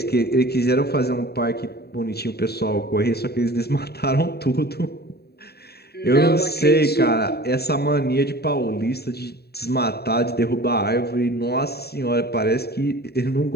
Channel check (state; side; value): late; right; 0.47 ms